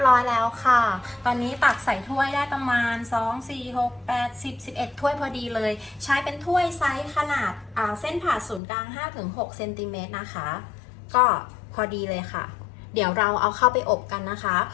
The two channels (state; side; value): drops out; right; at 8.6 s